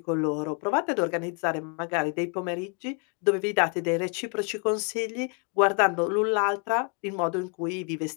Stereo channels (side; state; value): right; quieter; 37.5 dB